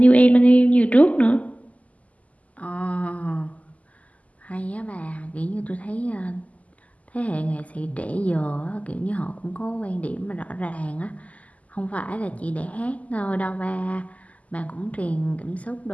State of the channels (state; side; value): late; right; 0.072 ms